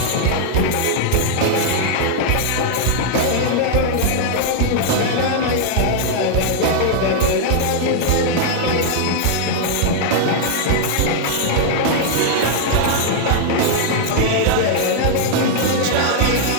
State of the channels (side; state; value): both; different; correlation -0.01